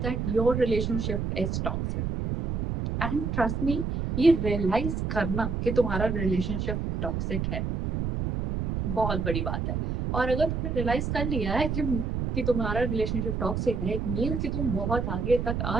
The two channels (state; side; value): noise; right; rumble, 1 dB below the sound